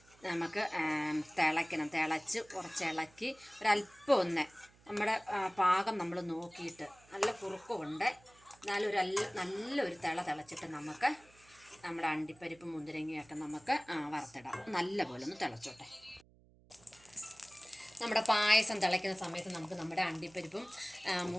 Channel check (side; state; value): right; noise; hum, 28 dB below the sound